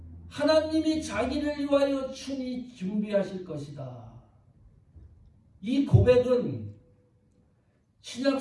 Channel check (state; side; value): identical; both; correlation 1.00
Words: 하나님이 자기를 위하여 친히 준비하실 것이다. 이 고백은 신약